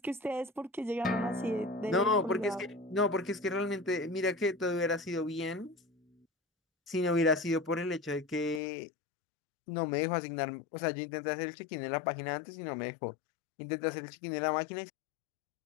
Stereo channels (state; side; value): drops out; right; at 8.6 s